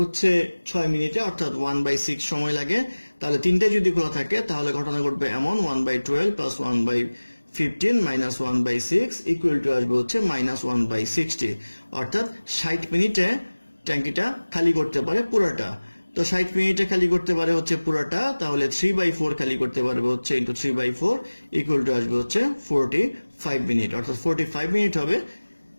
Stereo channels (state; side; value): inverted; both; correlation -1.00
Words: 6 মিনিটে, অর্থাৎ 1/6 সময় লাগে, তাহলে তিনটাই যদি খোলা থাকে তাহলে ঘটনা ঘটবে এমন 1/12 প্লাস 1/15 মাইনাস 1/6 ইকুয়াল টু আসবে হচ্ছে -1/60, অর্থাৎ 60 মিনিটে ট্যাঙ্কিটা খালি করতে পারে পুরোটা। তো 60 মিনিটে খালি করতে পারে হচ্ছে পুরোটা, তাহলে 3/4 খালি করতে পারবে হচ্ছে ইন্টু 3/4 ইকুয়াল টু আসবে হচ্ছে 45 মিনিট, অর্থাৎ 45 মিনিট হবে